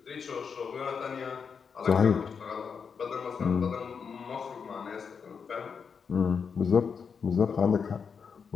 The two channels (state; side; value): quieter; right; 6.1 dB